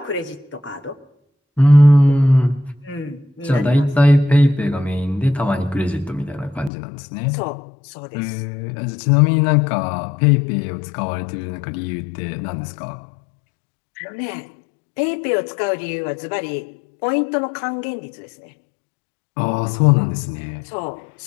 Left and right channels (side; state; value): right; drops out; at 6.7 s